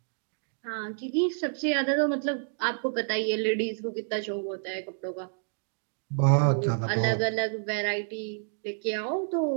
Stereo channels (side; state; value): left; silent; digital silence